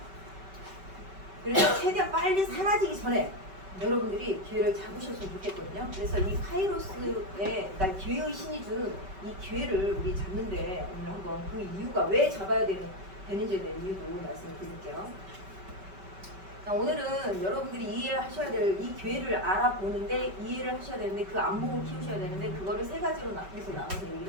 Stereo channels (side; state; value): left; late; 5.2 ms